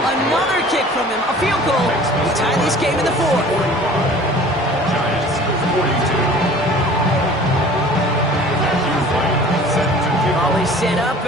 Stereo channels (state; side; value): normal; both; correlation 0.46